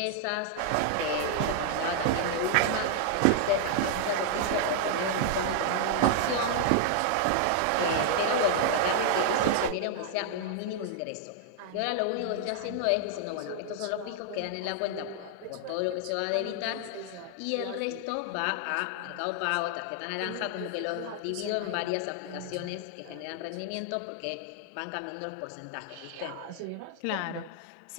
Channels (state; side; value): different; both; correlation -0.01